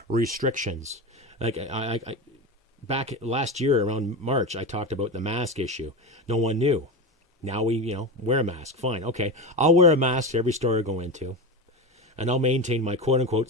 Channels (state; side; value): normal; both; correlation 0.20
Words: restrictions. Like I back last year around March, I talked about the mask issue. No one knew. Now we, wear a mask. Fine. Okay. I'll wear a mask to every store I go into. And I'll maintain my quote-unquote